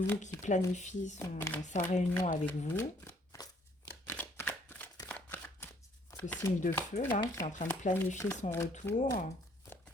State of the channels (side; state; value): both; normal; correlation 0.63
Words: qui planifie sa réunion avec vous, ce signe de feu là, qui est en train de planifier son retour.